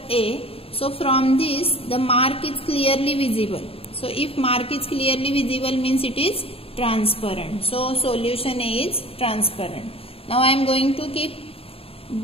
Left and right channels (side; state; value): right; late; 0.27 ms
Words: A. So from this the mark is clearly visible. So if mark is clearly visible, means it is transparent. So solution A is transparent. Now I am going to keep